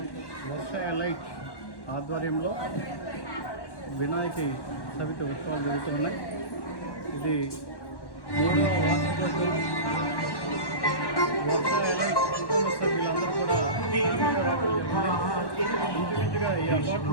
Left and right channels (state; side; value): late; right; 1.1 ms